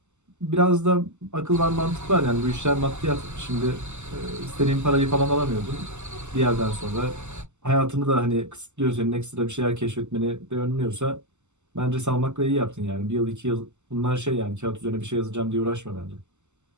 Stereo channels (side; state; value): left; late; 0.83 ms